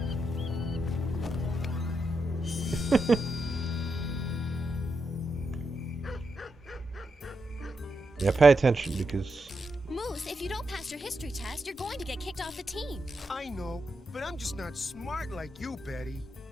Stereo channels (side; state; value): both; normal; correlation 0.85